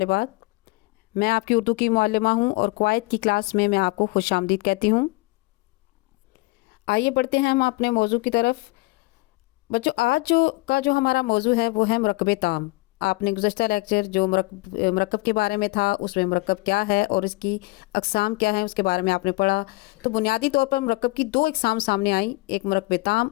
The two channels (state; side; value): quieter; right; 23.6 dB